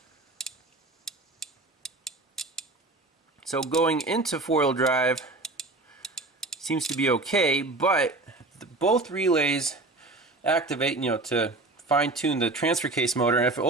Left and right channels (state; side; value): quieter; left; 3.1 dB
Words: So going into four-wheel drive seems to be okay, but both relays activate, to fine-tune the transfer case motor, and if it